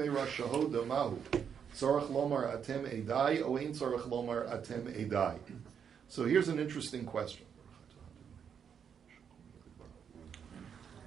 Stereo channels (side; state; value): left; quieter; 7.5 dB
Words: Shahoda Mahu, Tzarech Lomar Atem Edai, O Ein Tzarech Lomar Atem Edai. So here's an interesting question.